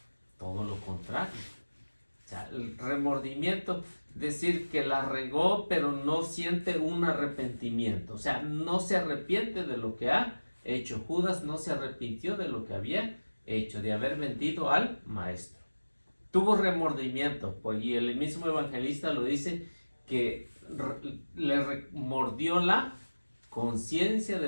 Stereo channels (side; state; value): both; inverted; correlation -1.00